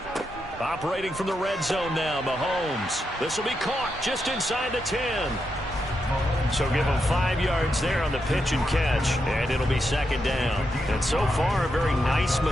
Operating from the red zone now, Mahomes. This will be caught just inside the 10. So give him 5 yards there on the pitch and catch, and it'll be 2nd down. And so far, a very nice,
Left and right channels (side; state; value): both; normal; correlation 0.84